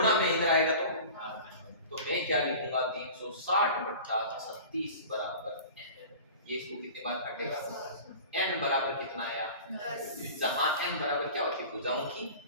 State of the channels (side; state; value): both; inverted; correlation -0.39